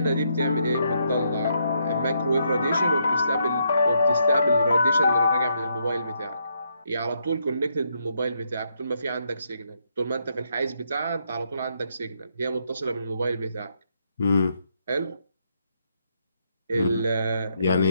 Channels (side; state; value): both; inverted; correlation -0.76